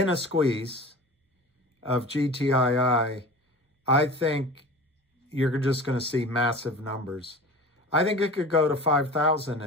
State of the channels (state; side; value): normal; both; correlation 0.36